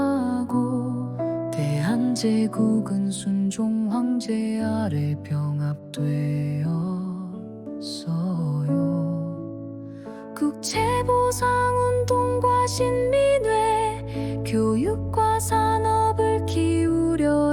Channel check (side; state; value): both; identical; correlation 1.00